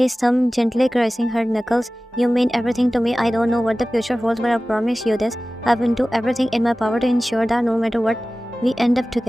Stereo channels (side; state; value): both; normal; correlation 0.97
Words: thumb gently caressing her knuckles. You mean everything to me. I don't know what the future holds, but I promise you this. I will do everything in my power to ensure that no matter what we end up